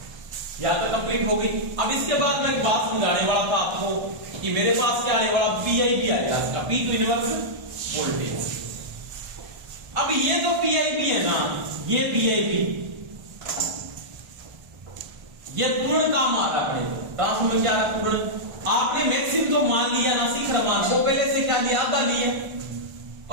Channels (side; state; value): left; late; 1.3 ms